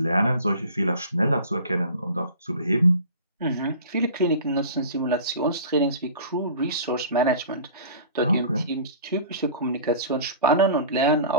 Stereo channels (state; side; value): inverted; both; correlation -0.41